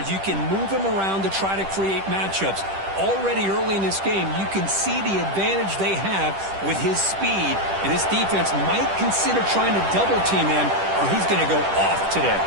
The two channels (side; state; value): left; late; 10 ms